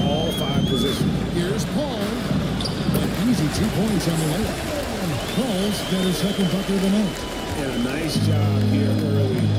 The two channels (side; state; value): both; identical; correlation 1.00